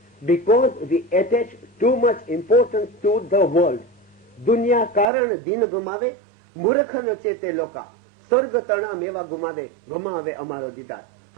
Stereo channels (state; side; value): drops out; left; at 5.1 s